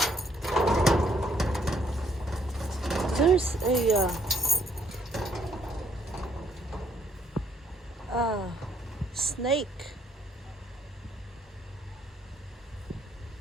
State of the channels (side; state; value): both; normal; correlation 0.68